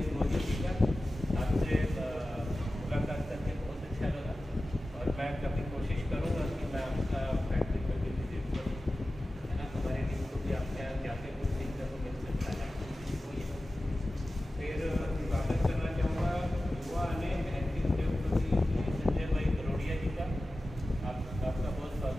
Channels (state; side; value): normal; both; correlation 0.95